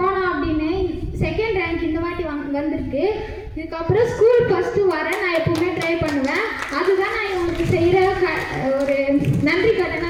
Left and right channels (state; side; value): identical; both; correlation 1.00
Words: அப்படின்னு. 2nd ரேங்க் இந்த வாட்டி வந்திருக்கு. இதுக்கப்புறம் ஸ்கூல் ஃபஸ்ட்டு வரேன், நான் எப்பவுமே ட்ரை பண்ணுவேன். அதுதான் நான் இவங்களுக்கு செய்கிற ஒரு நன்றி